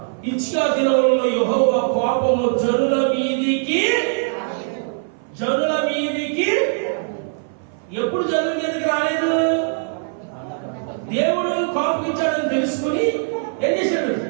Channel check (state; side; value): silent; left; 57 dB below the other